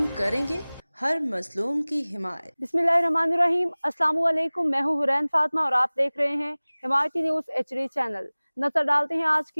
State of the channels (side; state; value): both; inverted; correlation -1.00